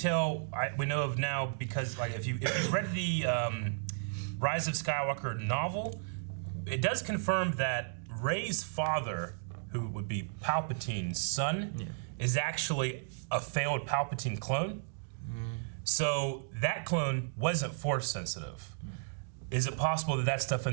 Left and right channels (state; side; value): silent; left; digital silence